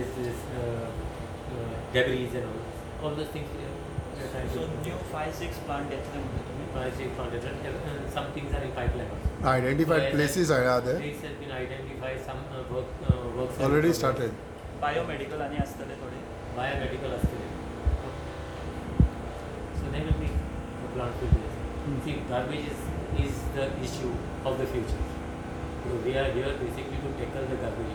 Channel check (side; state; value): both; identical; correlation 1.00